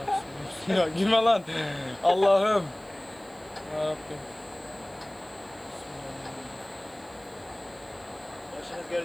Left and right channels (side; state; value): right; noise; hiss, 28 dB below the sound